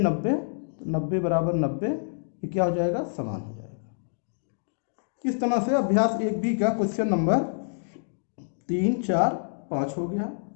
तो 90 = 90, ये क्या हो जाएगा, समान हो जाएगा। इस तरह से अभ्यास 1B का क्वेश्चन नंबर 3 4 5 हो गया।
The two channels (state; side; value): silent; right; digital silence